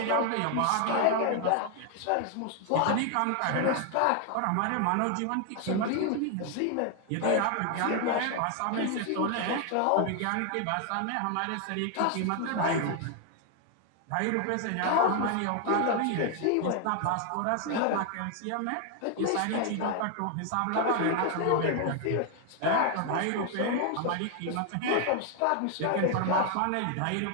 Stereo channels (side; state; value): both; different; correlation 0.00